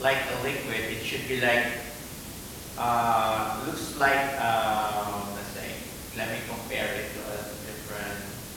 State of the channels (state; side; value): identical; both; correlation 1.00